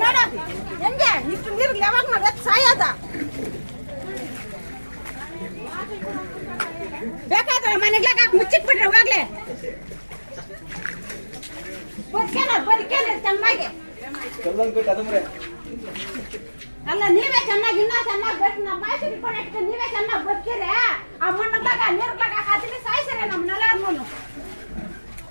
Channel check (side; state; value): both; inverted; correlation -1.00